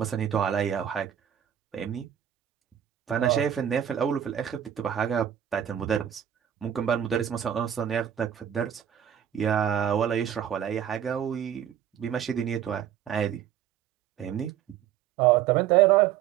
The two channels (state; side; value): quieter; left; 9.8 dB